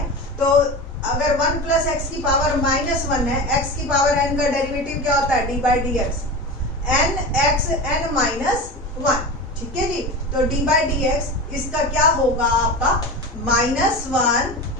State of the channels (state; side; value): normal; both; correlation 0.27